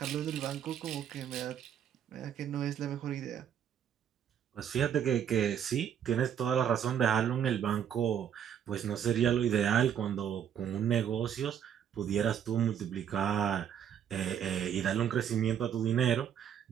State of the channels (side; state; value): left; quieter; 9.0 dB